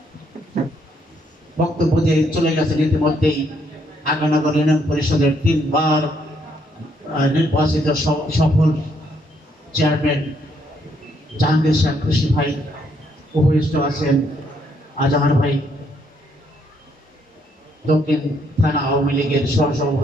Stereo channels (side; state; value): both; normal; correlation 0.71